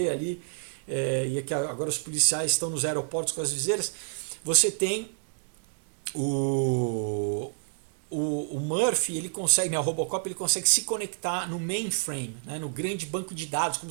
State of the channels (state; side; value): silent; left; digital silence